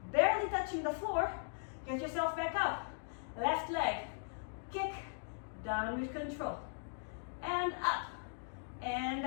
Barely touching the floor. Get yourself back up. Left leg. Kick. Down with control. And up. And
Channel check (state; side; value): silent; right; digital silence